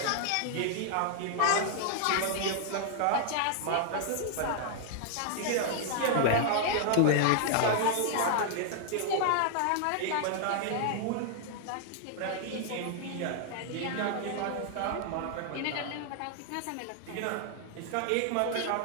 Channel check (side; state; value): both; different; correlation 0.00